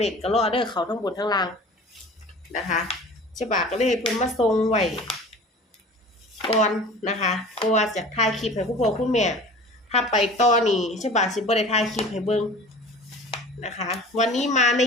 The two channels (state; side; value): normal; both; correlation 0.41